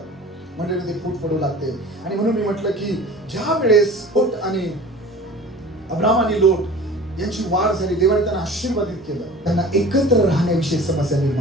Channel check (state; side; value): normal; both; correlation 0.42